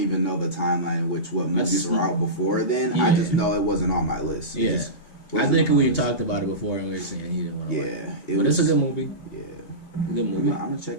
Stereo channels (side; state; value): right; late; 2.8 ms